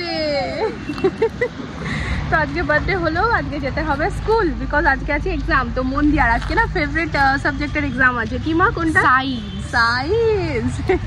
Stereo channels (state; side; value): identical; both; correlation 1.00